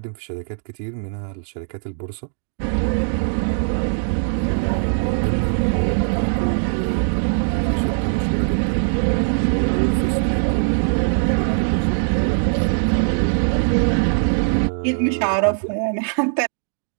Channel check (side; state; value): left; silent; digital silence